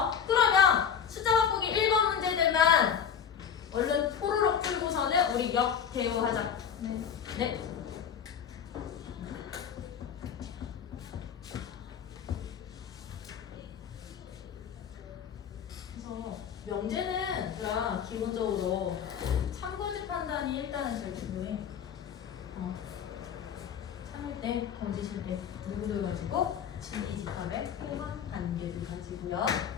그러면 숫자 바꾸기 1번 문제들만 얼른 포로록 풀고서는 우리 역 대우하자. 네. 네. 그래서 명제는 얘들아 기본적으로 참거짓 판단이 일단은 제일 중요해. 참일 때, 거짓일 때 누구를 가지고 진리집합의 포함 관계를 가지고요.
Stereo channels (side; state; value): right; quieter; 7.8 dB